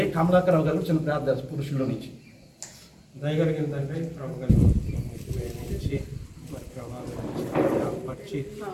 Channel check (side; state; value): both; identical; correlation 1.00